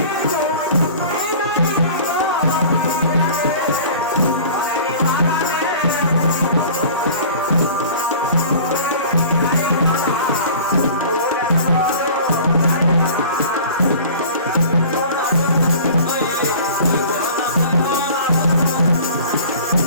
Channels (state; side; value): inverted; both; correlation -0.42